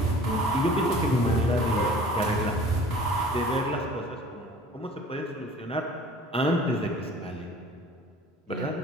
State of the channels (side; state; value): both; normal; correlation 0.47